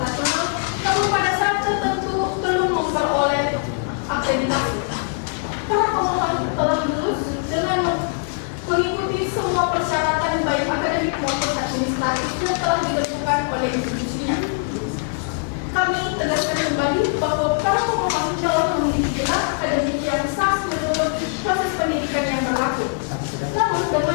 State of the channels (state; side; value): silent; right; 64 dB below the other